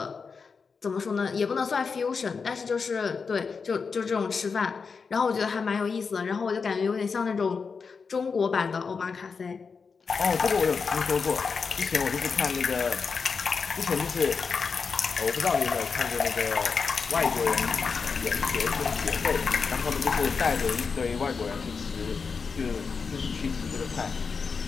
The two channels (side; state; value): right; quieter; 5.3 dB